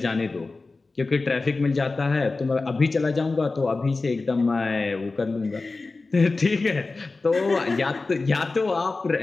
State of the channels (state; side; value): quieter; right; 3.6 dB